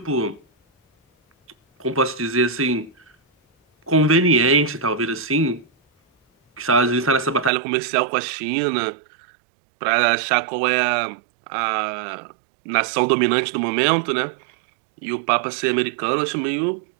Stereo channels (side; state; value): left; drops out; at 7.5 s